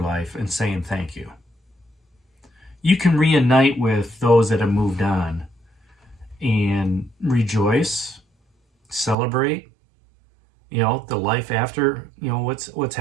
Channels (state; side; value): drops out; left; at 9.2 s